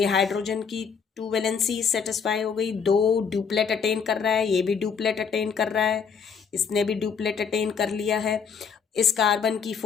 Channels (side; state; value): right; quieter; 6.3 dB